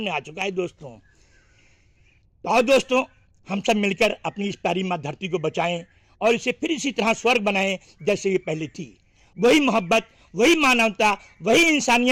आ चुका है दोस्तों। तो आओ दोस्तों, हम सब मिलकर अपनी इस प्यारी माँ धरती को बचाएं और इसे फिर इसी तरह स्वर्ग बनाएं जैसे ये पहले थी। वही मोहब्बत, वही मानवता, वही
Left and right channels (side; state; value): both; identical; correlation 1.00